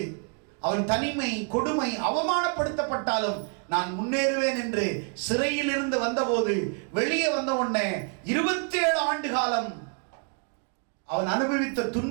அவன் தனிமை, கொடுமை, அவமானப்படுத்தப்பட்டாலும் நான் முன்னேறுவேன் என்று சிறையில் இருந்து வந்தபோது, வெளியே வந்த உடனே 27 ஆண்டு காலம் அவன் அனுபவித்த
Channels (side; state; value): left; quieter; 38.7 dB